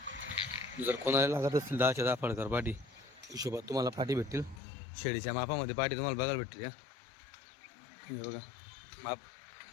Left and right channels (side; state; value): right; drops out; at 4.6 s